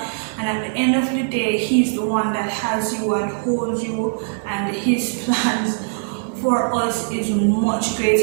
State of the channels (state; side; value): silent; left; digital silence